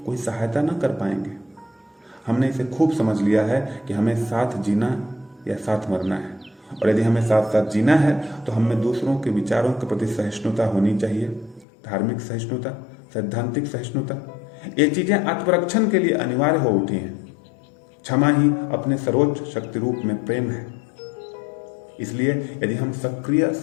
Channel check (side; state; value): right; drops out; at 11.7 s